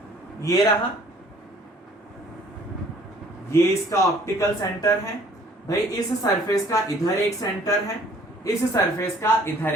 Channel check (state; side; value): normal; both; correlation 0.56